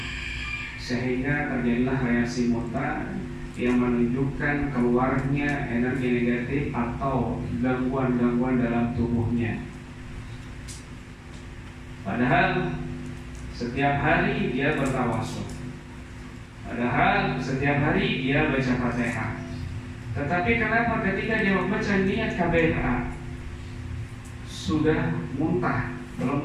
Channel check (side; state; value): both; identical; correlation 1.00